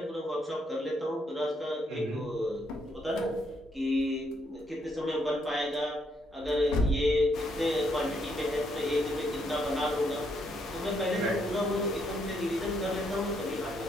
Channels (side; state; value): both; normal; correlation 0.74